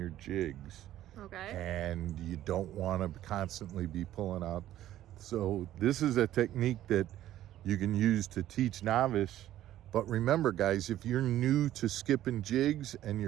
jigs. Okay. And you don't want to constantly be pulling out. So this is a technique that you can use to teach novice. But remember, guys, if you're new to skipping jigs and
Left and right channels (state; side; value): quieter; left; 13.1 dB